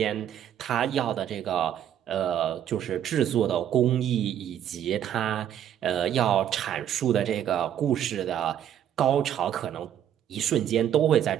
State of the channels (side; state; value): left; quieter; 10.2 dB